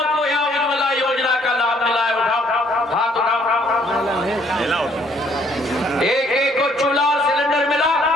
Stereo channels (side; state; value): both; normal; correlation 0.64